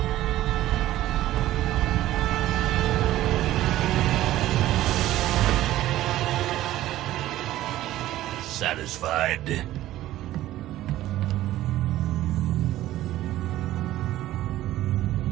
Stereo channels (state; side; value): quieter; left; 14.6 dB